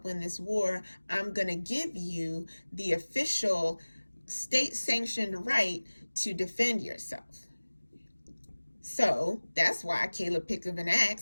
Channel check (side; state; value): both; inverted; correlation -1.00